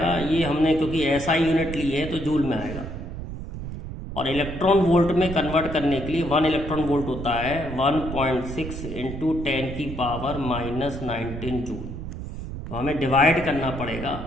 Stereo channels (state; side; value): noise; right; rumble, 8 dB below the sound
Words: ये हमने क्योंकि ऐसा यूनिट ली है तो जूल में आएगा, और इलेक्ट्रॉन वोल्ट में कन्वर्ट करने के लिए 1 इलेक्ट्रॉन वोल्ट होता है 1.6 × 10⁻19 जूल। तो हमें डिवाइड करना पड़ेगा